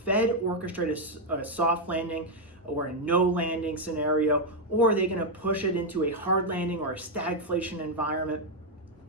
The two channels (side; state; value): both; normal; correlation 0.00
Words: orchestrate a soft landing or a no landing scenario, or are they going to push it into a hard landing or a stagflation environment?